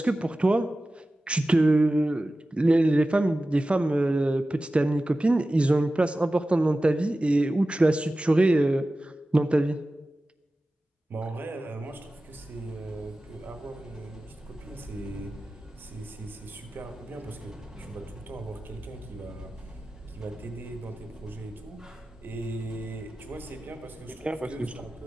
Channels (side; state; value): both; normal; correlation 0.95